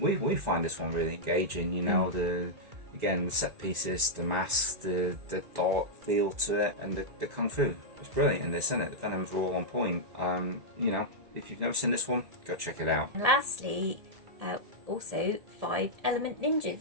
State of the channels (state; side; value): late; left; 1.8 ms